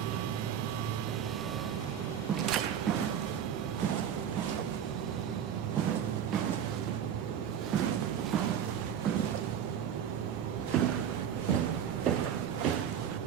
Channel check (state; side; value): quieter; left; 8.9 dB